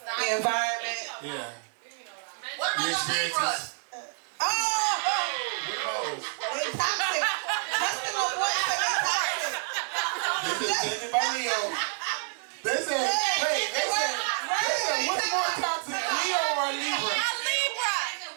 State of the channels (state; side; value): silent; left; 59 dB below the other